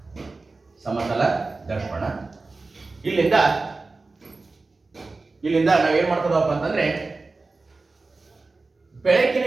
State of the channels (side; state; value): left; quieter; 3.6 dB